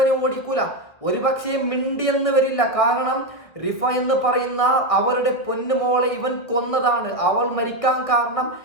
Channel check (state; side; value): late; right; 1.7 ms